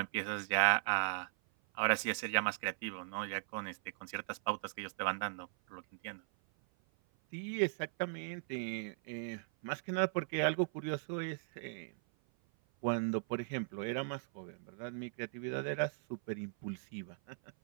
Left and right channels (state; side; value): silent; left; 52 dB below the other